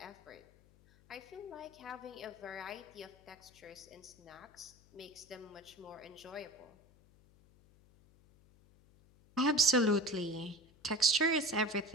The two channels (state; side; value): noise; left; hum, 27 dB below the sound